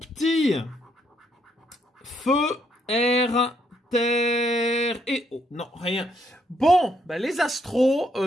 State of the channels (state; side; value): normal; both; correlation 0.73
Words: Feu, Air, Terre et eau. Non, rien. Bon, bah les astros,